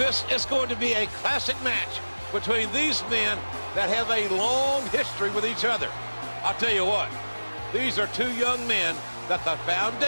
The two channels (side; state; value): both; inverted; correlation -1.00